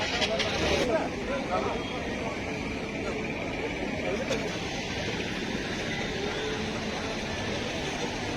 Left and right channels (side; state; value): both; identical; correlation 1.00